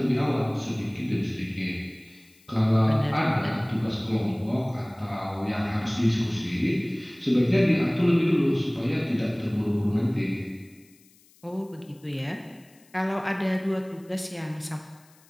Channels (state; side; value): noise; left; hiss, 29 dB below the sound